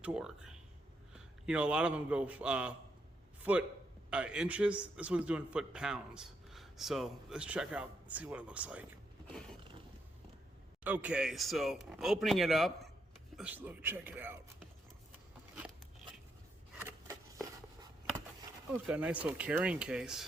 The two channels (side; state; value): both; normal; correlation 0.79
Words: torque. You know, a lot of them go foot inches. This one's doing foot pounds. So let's check out and see what it looks like. Okay, so opening it up, let's check it out. Oh, it's got a nice little carrying